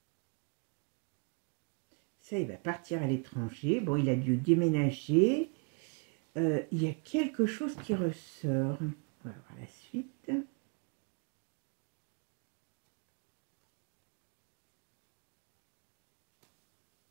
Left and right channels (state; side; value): quieter; left; 36.4 dB